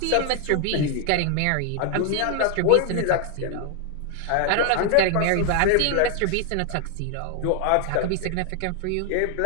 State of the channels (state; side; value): different; both; correlation 0.00